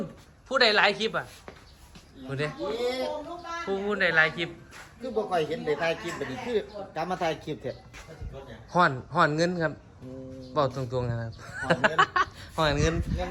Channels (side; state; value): both; identical; correlation 1.00